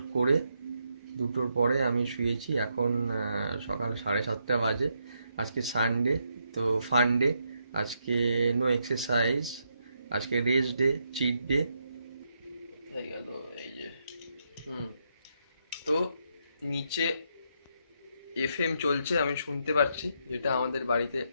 করে 2টোর পরে আমি শুয়েছি। এখন সকাল 7:30 বাজে। আজকে সানডে, তো ফান ডে। আজকে নো এক্সারসাইজ, আজকে রেস্ট ডে, চিট ডে হয়ে গেল। এই যে তো নিচে এফএম চলছে, আমি শুনতে পাচ্ছি, যেটা আমাদের বাড়িতে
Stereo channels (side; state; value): both; inverted; correlation -0.79